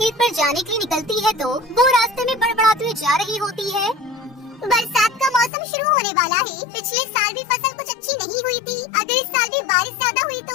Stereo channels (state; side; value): drops out; right; at 5.5 s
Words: पर जाने के लिए निकलती है तो वो रास्ते में बड़बड़ाते हुए जा रही होती है। बरसात का मौसम शुरू होने वाला है। पिछले साल भी फसल कुछ अच्छी नहीं हुई थी। अगर इस साल भी बारिश ज्यादा हुई